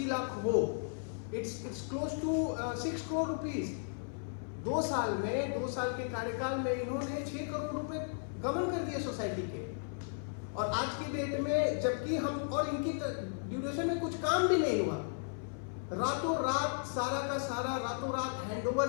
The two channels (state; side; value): silent; right; 54 dB below the other